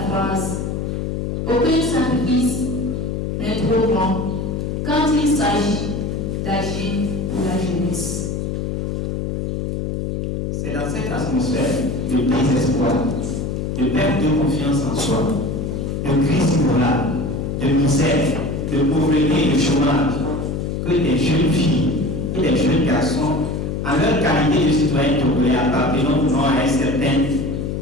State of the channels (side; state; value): left; noise; hum, 2 dB below the sound